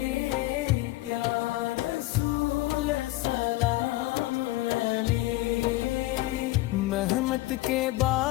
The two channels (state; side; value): quieter; right; 18.6 dB